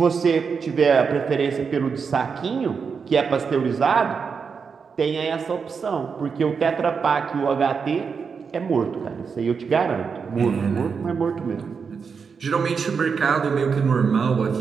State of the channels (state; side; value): quieter; left; 5.8 dB